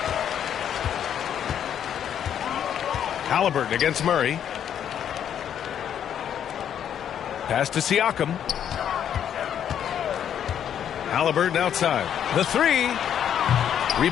Halliburton against Murray. Pass to Siakam. Halliburton outside. The three.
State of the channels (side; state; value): right; quieter; 9.3 dB